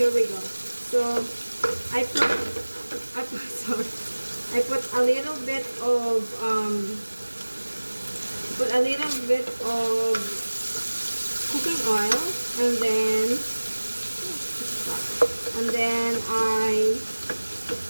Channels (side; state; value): both; inverted; correlation -1.00